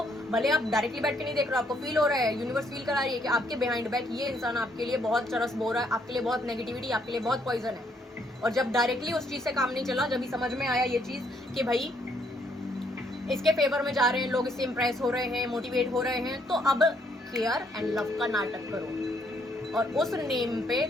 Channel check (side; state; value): both; normal; correlation 0.70